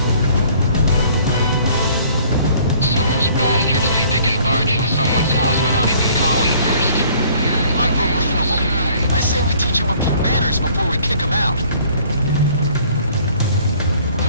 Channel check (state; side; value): inverted; both; correlation -0.56